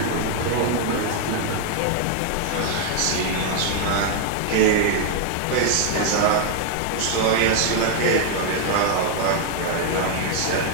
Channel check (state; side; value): different; both; correlation 0.00